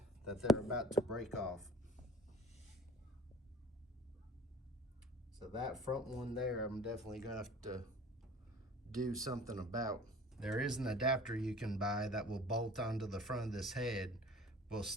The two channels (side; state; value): both; normal; correlation 0.45